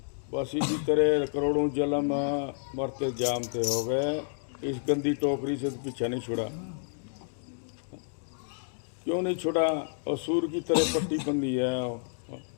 बस इसी तरह करोड़ों जन्म मरते जामते हो गए, इस गंदी टोकरी से तो पीछा नहीं छुड़ा। क्यों नहीं छुड़ा? और सूर की तरह पट्टी बंदी है,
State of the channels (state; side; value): silent; right; digital silence